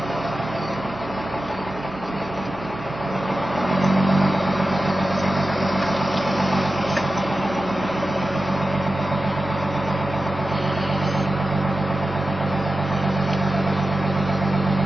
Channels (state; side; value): noise; right; hum, 21 dB below the sound